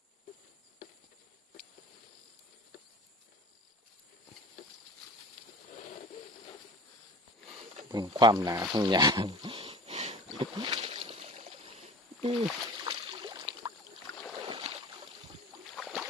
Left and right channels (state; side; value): normal; both; correlation 0.40